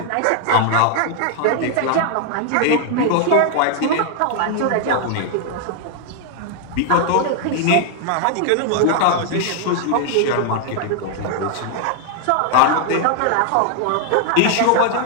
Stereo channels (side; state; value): both; different; correlation 0.00